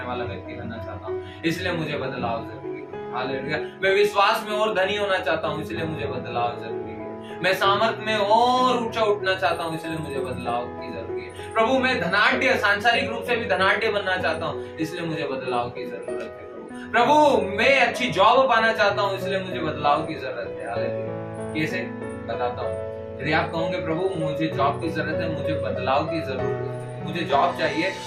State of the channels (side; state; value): both; identical; correlation 1.00